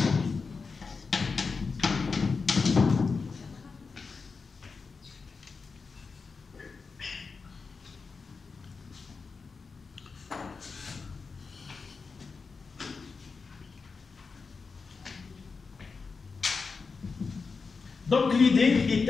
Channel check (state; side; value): quieter; right; 4.7 dB